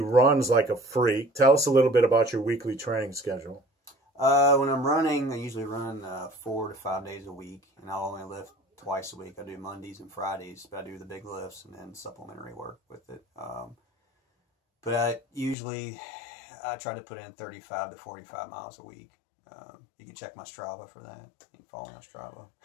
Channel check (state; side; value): drops out; right; at 15.6 s